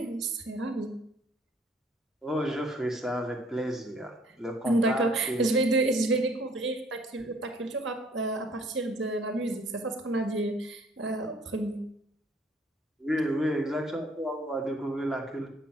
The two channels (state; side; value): normal; both; correlation 0.58